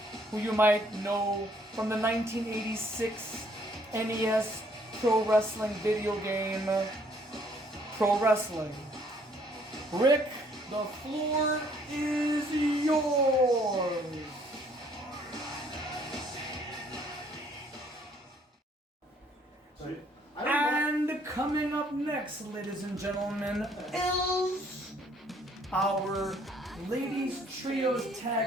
who you might know from the 1986 NES Pro Wrestling video game, Pro Wrestling. Rick, the floor is yours. And coming up next, ladies and gentlemen, is our ladies trios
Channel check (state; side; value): normal; both; correlation 0.63